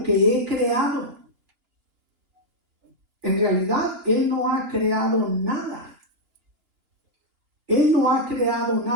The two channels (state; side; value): late; left; 2.9 ms